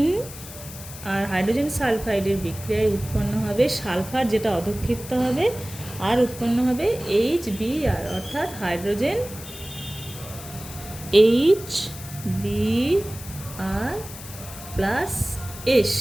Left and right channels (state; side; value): noise; left; hiss, 14 dB below the sound